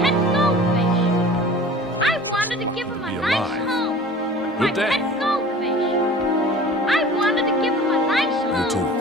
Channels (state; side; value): normal; both; correlation 0.42